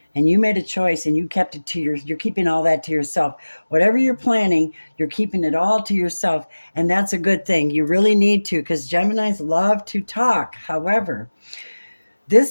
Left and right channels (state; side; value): inverted; both; correlation -1.00